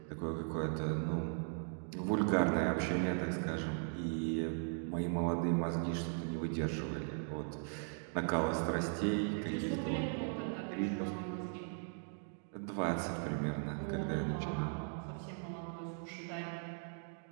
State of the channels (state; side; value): silent; left; 52 dB below the other